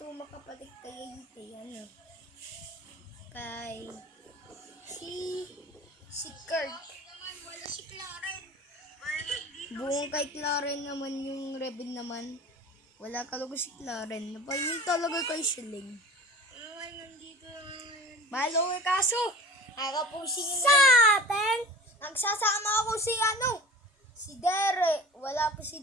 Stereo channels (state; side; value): normal; both; correlation 0.38